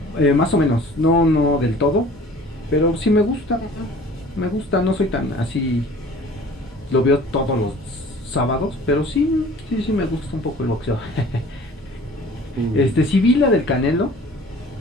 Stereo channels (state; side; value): normal; both; correlation 0.48